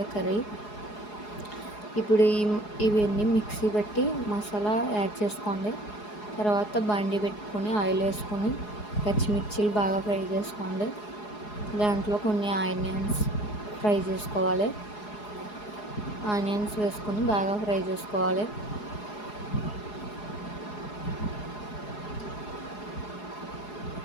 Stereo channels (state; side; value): late; right; 4.8 ms